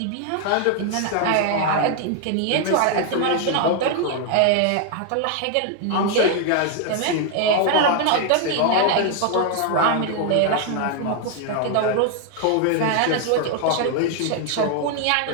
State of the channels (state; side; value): different; both; correlation 0.00